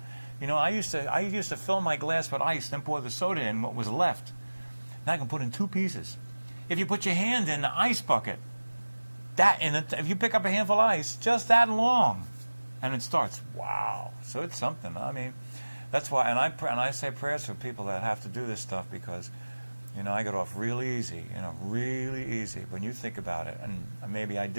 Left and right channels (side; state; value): both; inverted; correlation -1.00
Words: You know, I used to fill my glass with ice, then pour the soda in what was left. Now I can put in 2 pieces. If you put your hand in the ice bucket, if you pick up a handful of ice, just that long, and it starts. Wow! So it's something. I mean, that's why. And I say prayers for people that have to do this stuff because, you know, I got off really easy. You know, really easy. When you think about it, and maybe I